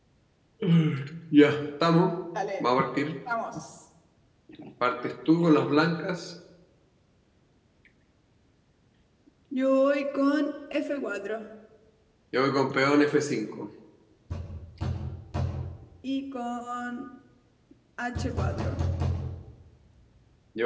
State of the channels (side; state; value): both; identical; correlation 1.00